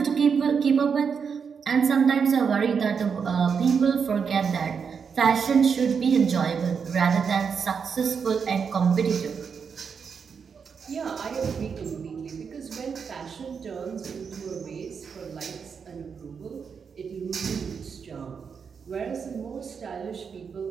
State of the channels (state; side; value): quieter; left; 6.3 dB